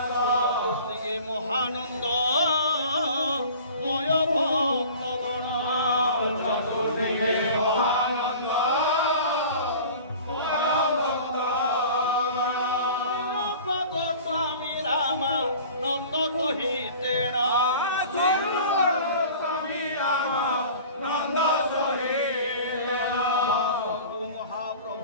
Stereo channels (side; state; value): both; inverted; correlation -0.42